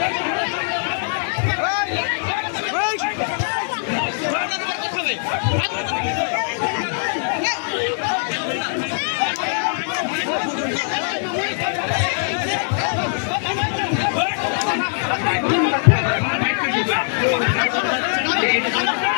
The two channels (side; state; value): right; silent; digital silence